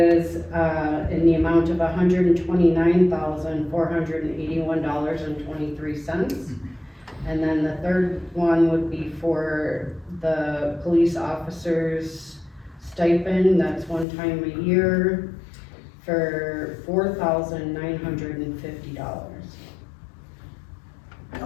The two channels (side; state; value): right; drops out; at 14.1 s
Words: in the amount of $129,481.23. And then the third one would be for the police officers stipend, that's one time a year, for $4,950.